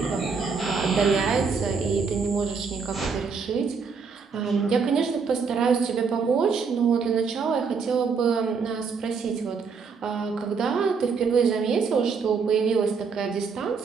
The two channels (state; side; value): quieter; left; 5.4 dB